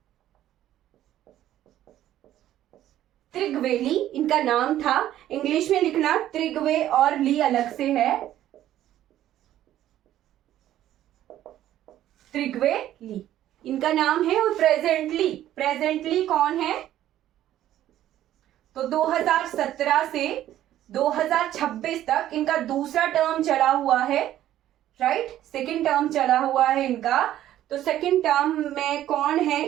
इनका नाम था। इंग्लिश में लिखना, त्रिग्वे और ली अलग से है, त्रिग्वे ली इनका नाम है। और प्रेजेंटली कौन है? तो 2017 से 2026 तक इनका दूसरा टर्म चला हुआ है, राइट। सेकंड टर्म चला हुआ है इनका। तो सेकंड टर्म में कौन है?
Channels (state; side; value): quieter; left; 12.6 dB